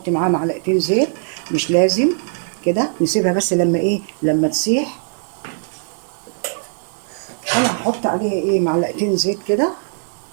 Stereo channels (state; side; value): silent; left; digital silence